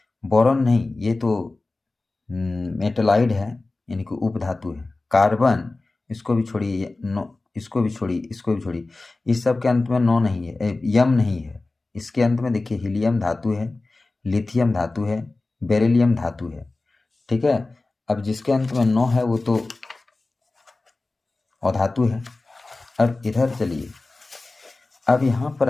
बोरॉन नहीं, ये तो मेटलाइड है, यानी कि उपधातु है। कार्बन, इसको भी छोड़िए, इसको भी छोड़िए, इसको भी छोड़िए, इस सब के अंत में 9 नहीं है, यम नहीं है। इसके अंत में देखिए हीलियम धातु है, लिथियम धातु है, बेरिलियम धातु है। ठीक है। अब जिसके अंत में 9 है वो तो अधातु है। अब इधर चलिए, अब यहाँ पर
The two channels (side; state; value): right; quieter; 3.3 dB